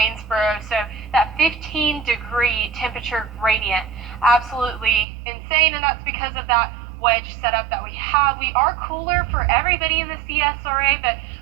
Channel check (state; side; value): drops out; left; at 5.1 s